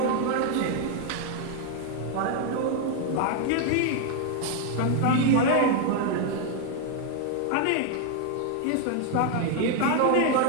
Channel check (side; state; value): both; different; correlation 0.00